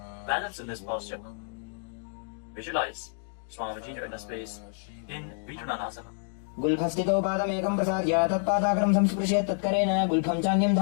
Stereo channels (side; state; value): right; silent; digital silence